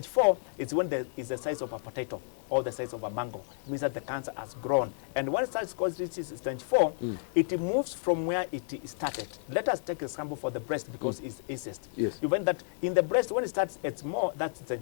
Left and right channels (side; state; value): right; silent; 57 dB below the other